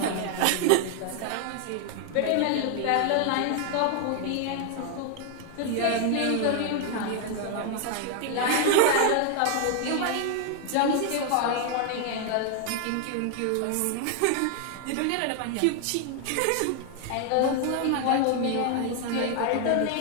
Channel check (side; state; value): both; different; correlation 0.00